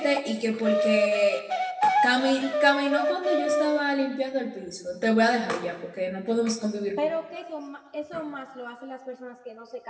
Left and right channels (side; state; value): both; identical; correlation 1.00